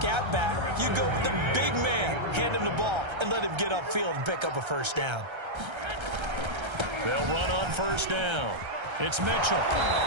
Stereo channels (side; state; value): left; late; 1.3 ms